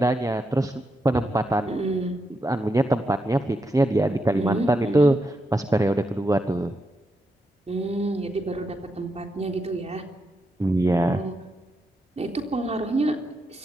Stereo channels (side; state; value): both; normal; correlation 0.84